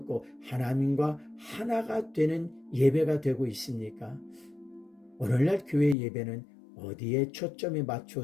하나님과 하나가 되는 예배가 되고 있습니까? 오늘날 교회 예배는 어디에 초점이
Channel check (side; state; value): right; drops out; at 6.0 s